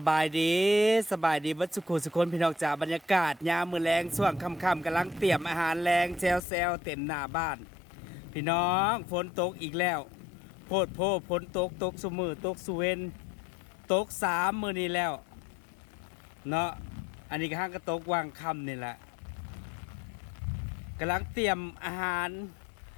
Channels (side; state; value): right; drops out; at 6.4 s